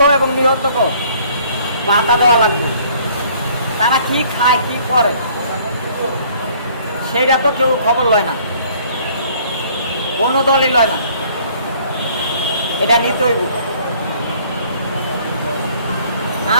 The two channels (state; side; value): inverted; both; correlation -0.58